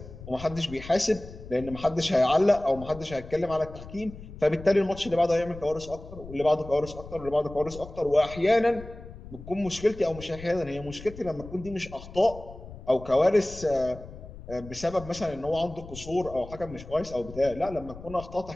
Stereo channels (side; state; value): left; noise; rumble, 15 dB below the sound